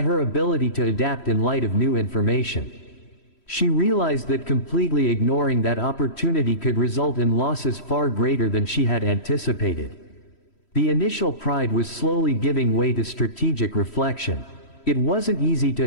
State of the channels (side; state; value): right; late; 3.1 ms